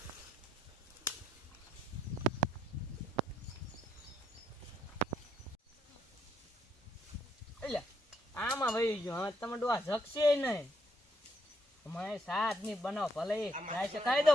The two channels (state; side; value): normal; both; correlation 0.74